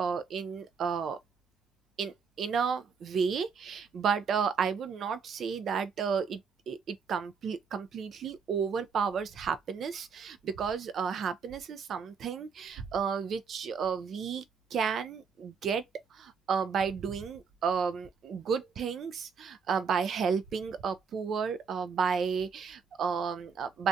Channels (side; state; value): left; quieter; 6.0 dB